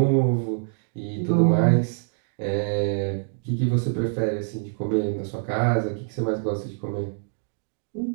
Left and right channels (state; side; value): silent; left; 62 dB below the other